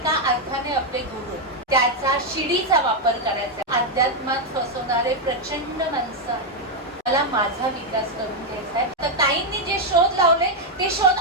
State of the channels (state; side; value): normal; both; correlation 0.01